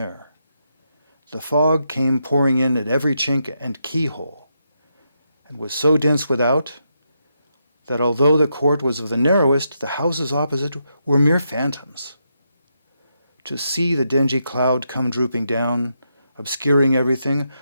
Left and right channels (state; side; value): inverted; both; correlation -0.82